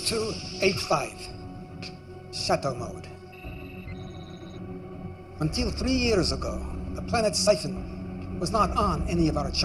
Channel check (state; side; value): identical; both; correlation 1.00